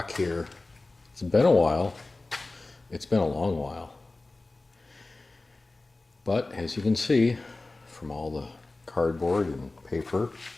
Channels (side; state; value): right; quieter; 3.2 dB